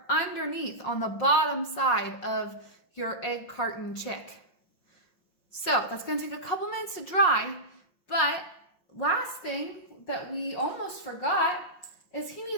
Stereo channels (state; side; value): late; right; 5.5 ms